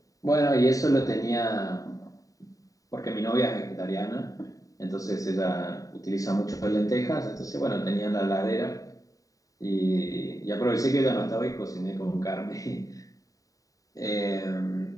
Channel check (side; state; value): right; late; 0.16 ms